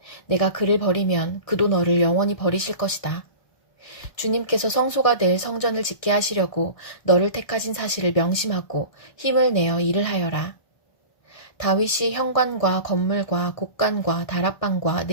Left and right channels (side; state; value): right; late; 1.6 ms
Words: 내가 그를 버리면 그도 너를 영원히 버리실 것이다. 주님께서 성소가 될 성전을 짓게 하시려고 너를 택하신 사실을 명심하고 힘을 내어 일을 하여라. 다윗이 현관과 건물과 곡간과 다락방과